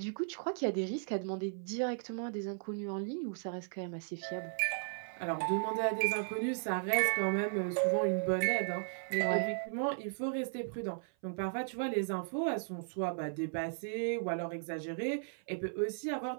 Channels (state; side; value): silent; left; 54 dB below the other